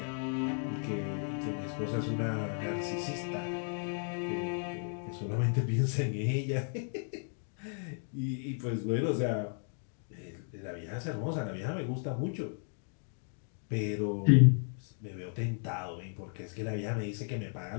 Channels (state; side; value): silent; right; 55 dB below the other